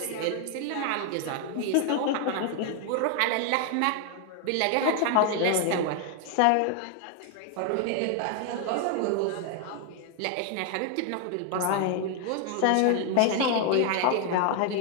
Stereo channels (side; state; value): both; different; correlation 0.00